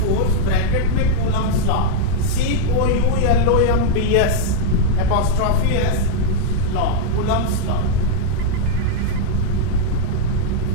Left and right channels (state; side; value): different; both; correlation -0.01